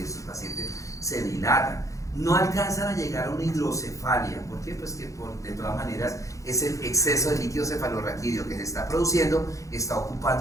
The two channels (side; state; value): right; late; 0.15 ms